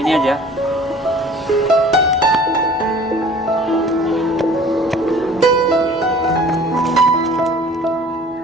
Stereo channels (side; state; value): both; normal; correlation 0.48